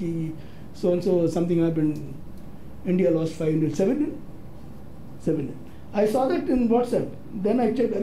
so and so something happened, India lost 5-0, 7-0. I saw that in WhatsApp. Then I checked,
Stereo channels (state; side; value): identical; both; correlation 1.00